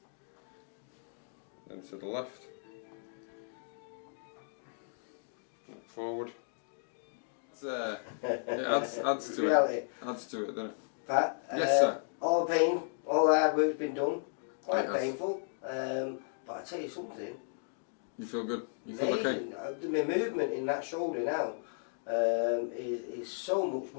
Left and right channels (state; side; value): silent; right; digital silence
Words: then to the left, forward. It adds to it. Adds to it, doesn't it? Pat, yes, sir. All the pain, all the hard work's been done. Quite It has. painful, but I tell you something. You feel good? You feel Amazing. okay? My movement in that shoulder now is so much